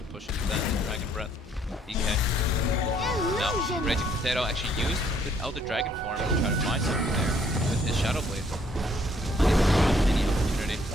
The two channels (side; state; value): both; normal; correlation 0.65